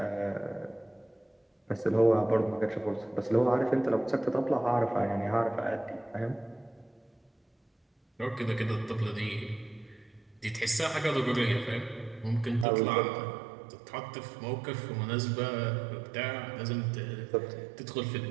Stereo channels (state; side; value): drops out; left; at 12.7 s